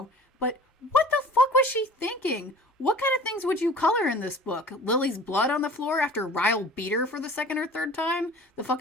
but what the fuck was she thinking? What kind of things would you color in this book? Lily's blood on the floor after Ryle beat her for the second or third time? The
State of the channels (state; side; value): normal; both; correlation 0.43